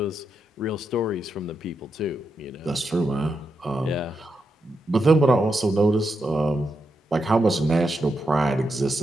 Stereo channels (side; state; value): both; normal; correlation 0.85